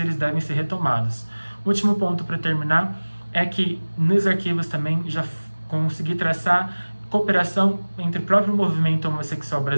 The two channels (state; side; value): inverted; both; correlation -1.00